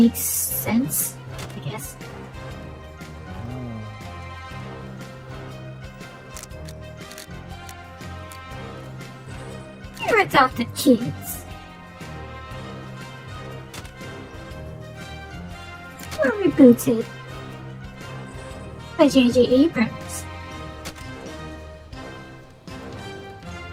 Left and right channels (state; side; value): identical; both; correlation 1.00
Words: sense, I guess. Your adopted kids. Were rebooted by J.J. Abrams.